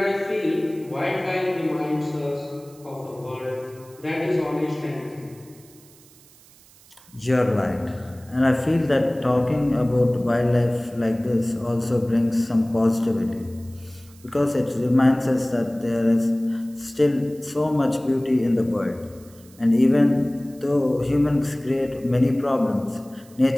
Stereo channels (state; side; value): noise; right; hiss, 26 dB below the sound